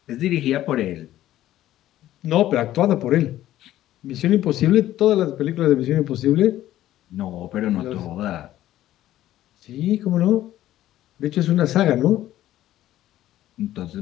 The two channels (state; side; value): quieter; right; 13.7 dB